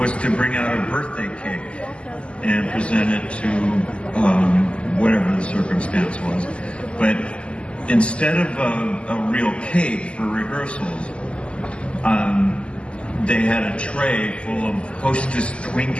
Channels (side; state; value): right; late; 0.054 ms